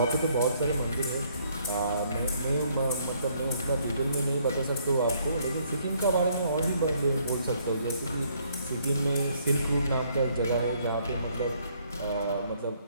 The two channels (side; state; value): both; inverted; correlation -0.68